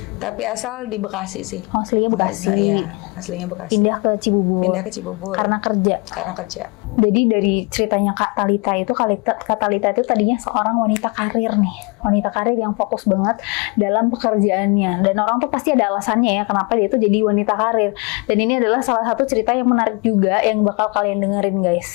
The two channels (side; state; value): right; quieter; 29.2 dB